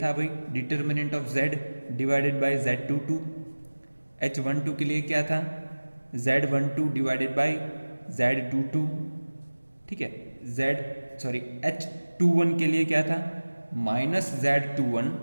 था भाई determinant of Z divided by Z22। H12 के लिए क्या था? Z12 divided by Z22। ठीक है, H21 के लिए क्या था? -Z21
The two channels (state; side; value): inverted; both; correlation -1.00